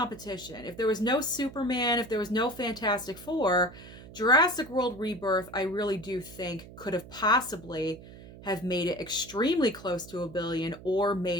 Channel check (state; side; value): noise; right; hum, 17 dB below the sound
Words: if there was no Superman, if there was no Fantastic Four, Jurassic World Rebirth, I really do think could have possibly have made it extremely close to $1 billion or